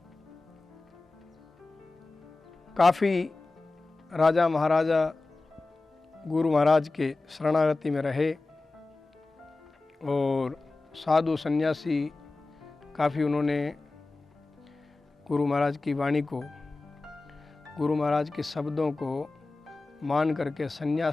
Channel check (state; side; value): quieter; right; 3.3 dB